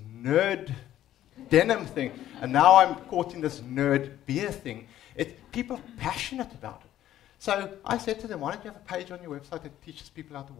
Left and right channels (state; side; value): quieter; right; 12.6 dB